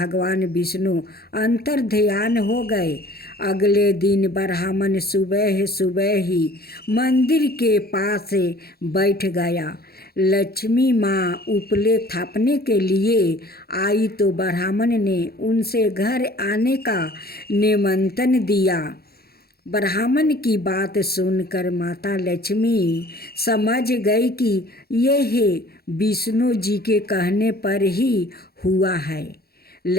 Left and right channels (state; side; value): late; right; 0.45 ms